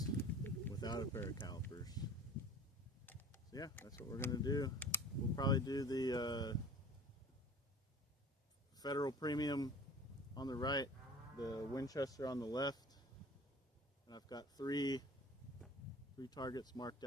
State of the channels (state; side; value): normal; both; correlation 0.44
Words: without a pair of calipers. So yeah, that's what we're going to do. We'll probably do the Federal Premium on the right, the Winchester on the left, and I've got three targets marked